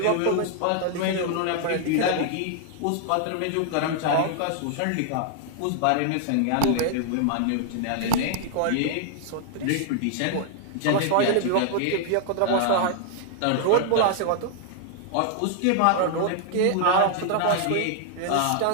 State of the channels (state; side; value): different; both; correlation -0.01